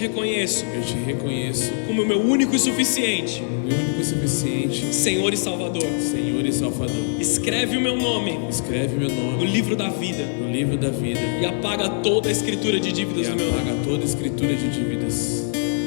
como o meu único e suficiente meu único e suficiente Senhor e Salvador. Senhor e Salvador. Escreve o meu nome Escreve meu no nome livro da vida no livro da vida e apaga toda a escritura de dívidas e do meu apaga nome, toda a escritura de dívidas.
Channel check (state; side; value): silent; right; digital silence